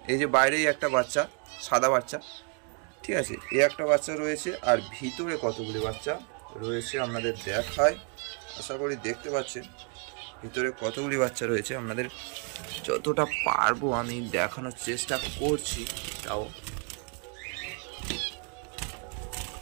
এই যে বাইরেই একটা বাচ্চা, সাদা বাচ্চা, ঠিক আছে, এই একটা বাচ্চা রয়েছে। আর ভিতরে কতগুলি বাচ্চা রয়েছে আপনাদের দেখায়, আশা করি দেখতে পাচ্ছেন ভিতরে কতগুলি বাচ্চা রয়েছে। আপনাদের যতটা পারবো আমি দেখানোর চেষ্টা করছি, তাও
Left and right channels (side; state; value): left; quieter; 40.0 dB